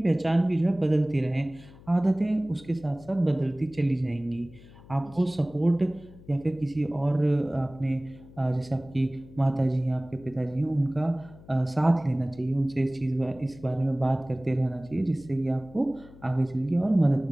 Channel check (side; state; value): left; noise; hum, 21 dB below the sound